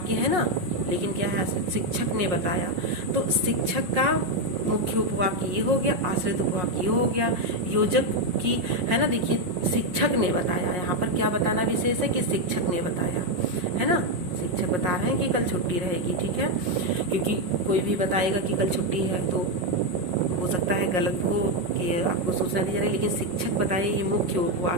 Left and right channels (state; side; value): late; left; 5.6 ms